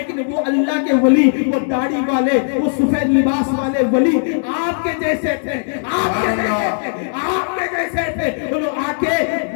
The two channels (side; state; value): right; silent; 63 dB below the other